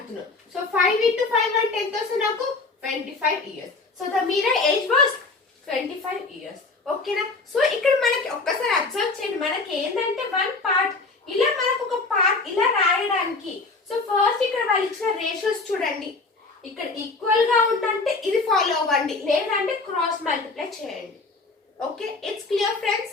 సో 5 into 5 అంటే ఎంత వస్తుంది నాకు? 25 years. So the Meera age was 25 years. ఓకేనా? సో ఇక్కడ మనకి ఒక్కసారి అబ్జర్వ్ చేయండి. మనకి ఏంటంటే 1 part ఇలా మనకు ఒక పార్ట్ ఇలా రాయడానికి. సో ఫస్ట్ ఇక్కడ వాళ్ళు ఇచ్చిన రేషియోస్ చూడండి. ఇక్కడ ఈక్వల్ గా ఉందంటే ఇది ఫాలో అవ్వండి, లేదంటే క్రాస్ మల్టిప్లై చేయండి. Okay, it's clear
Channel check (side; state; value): right; quieter; 3.8 dB